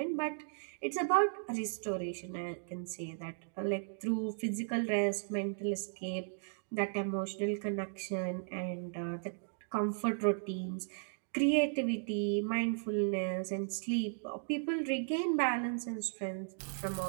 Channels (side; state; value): left; silent; digital silence